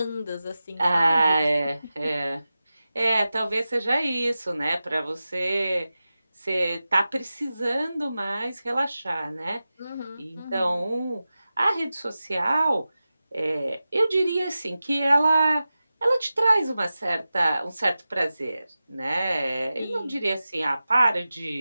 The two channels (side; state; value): both; inverted; correlation -0.94